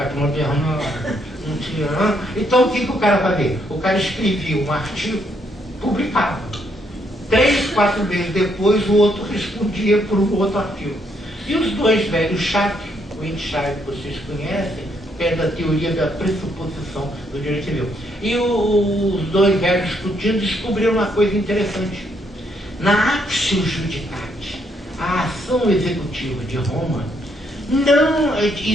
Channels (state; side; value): normal; both; correlation 0.73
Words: moderna, não tinha... Então o que o cara fazia? O cara escrevia um artigo, publicava. 3, 4 meses depois o outro respondia por um outro artigo. E os dois velhos chatos, o Entscheid vocês conhecem, que é da teoria da pressuposição do direito civil. E os dois velhos discutindo descobriram uma coisa interessante. Na Actio Judicatis, a ação executiva de Roma, não